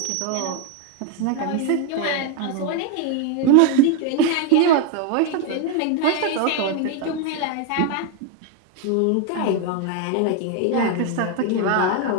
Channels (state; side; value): different; both; correlation 0.01